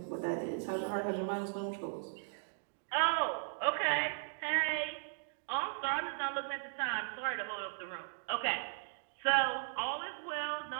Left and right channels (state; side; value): silent; left; digital silence